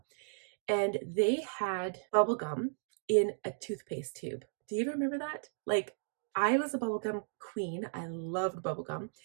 and they had bubble gum in a toothpaste tube. Do you remember that? Like, I was a bubblegum queen. I loved bubblegum.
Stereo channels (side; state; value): left; silent; digital silence